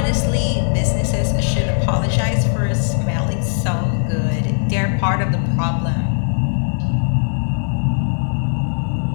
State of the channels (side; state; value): right; silent; digital silence